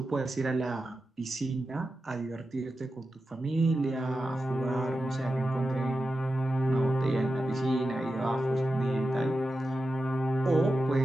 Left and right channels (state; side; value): normal; both; correlation 0.91